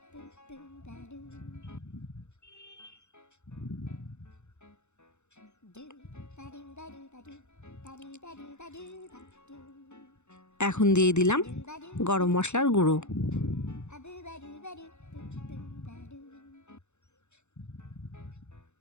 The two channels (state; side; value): late; right; 0.83 ms